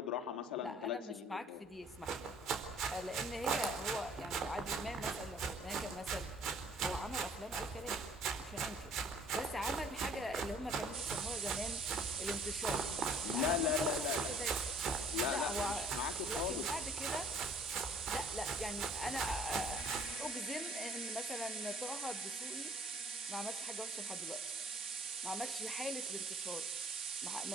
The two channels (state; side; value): normal; both; correlation 0.56